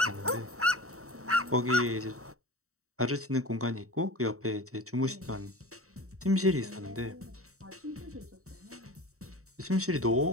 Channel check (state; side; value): late; left; 0.64 ms